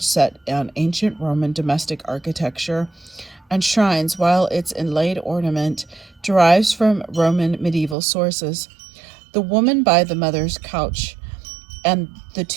set on ancient Roman domestic architecture and shrines, while its inlaid ornament derives from Roman medieval sources. The woman by the mother's couch and the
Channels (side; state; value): left; drops out; at 8.0 s